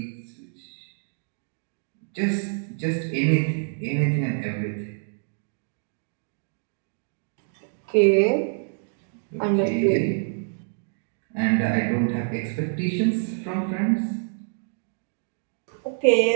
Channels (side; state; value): left; silent; digital silence